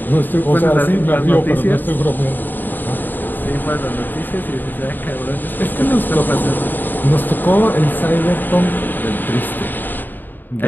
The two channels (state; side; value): late; right; 0.091 ms